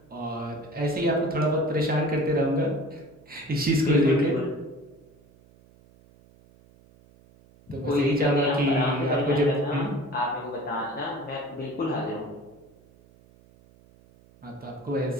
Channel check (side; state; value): right; noise; hum, 27 dB below the sound